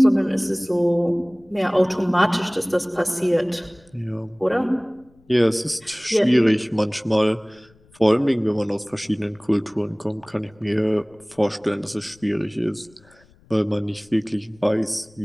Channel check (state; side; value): noise; left; rumble, 30 dB below the sound